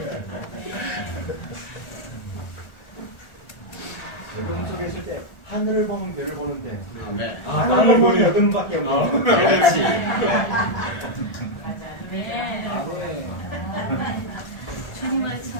어둠 속에 있을 때 하늘을 보면 별을 보는데 아멘. 하늘을 보면 어둠밖에 없는 그렇지. 네. 주님을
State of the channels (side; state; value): right; late; 1.4 ms